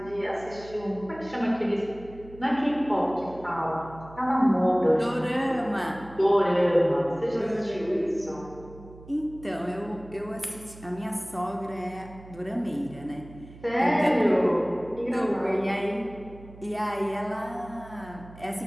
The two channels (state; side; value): noise; right; hum, 18 dB below the sound